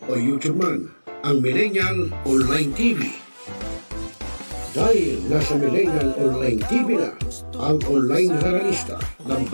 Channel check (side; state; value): both; inverted; correlation -1.00